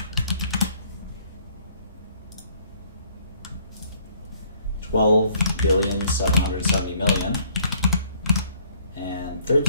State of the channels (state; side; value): inverted; both; correlation -0.62